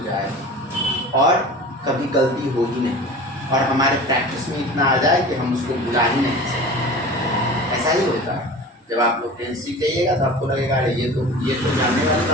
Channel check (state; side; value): normal; both; correlation 0.37